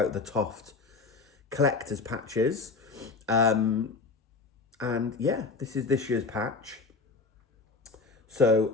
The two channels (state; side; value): quieter; right; 4.2 dB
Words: the Toft collector's patches. And yeah, this is this year's patch. So